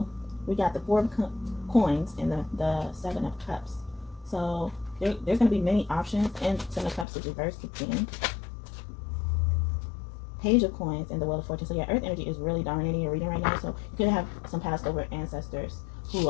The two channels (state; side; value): drops out; right; at 7.1 s